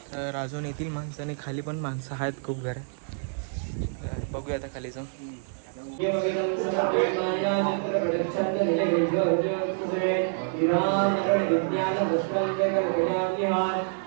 तर अजून येतील माणसं, आणि खाली पण माणसं आहेत खूप घर. बघूया आता खाली जाऊन.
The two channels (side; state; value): left; silent; 60 dB below the other